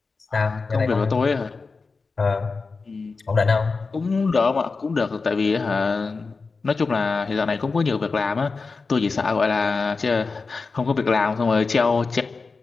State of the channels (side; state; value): right; quieter; 4.3 dB